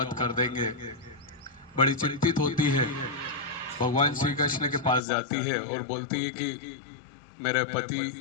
कर देंगे। बड़ी चिंतित होती है। भगवान श्री कृष्ण के पास जाती है और बोलती है कि मेरे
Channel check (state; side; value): drops out; right; at 5.0 s